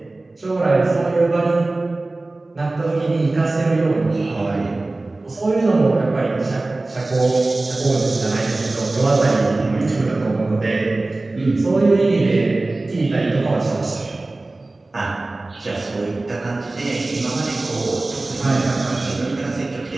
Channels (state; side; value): quieter; left; 3.0 dB